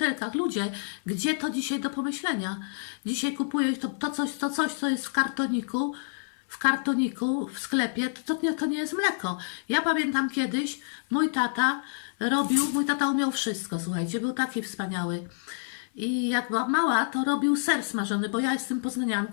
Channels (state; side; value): silent; right; 59 dB below the other